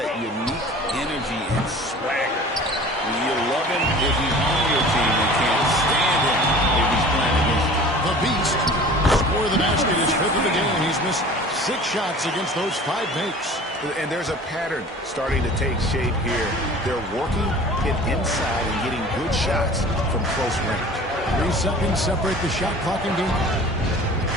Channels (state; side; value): normal; both; correlation 0.43